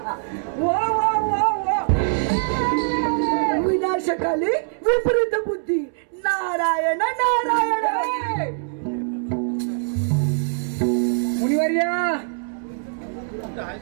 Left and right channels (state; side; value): silent; left; 64 dB below the other